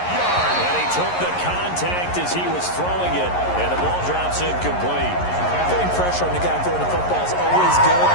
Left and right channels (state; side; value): late; right; 11 ms